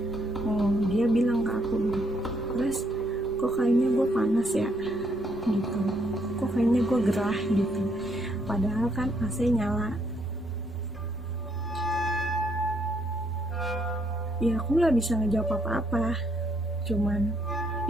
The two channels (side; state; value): both; normal; correlation 0.72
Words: dia bilang ke aku, terus kok kayaknya gue panas ya gitu, kok kayaknya gue gerah gitu, padahal kan AC nyala. Ya aku nggak bisa ngejawab apa-apa, cuman